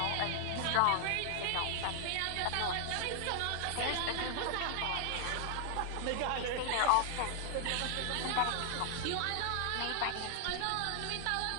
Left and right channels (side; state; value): both; different; correlation 0.00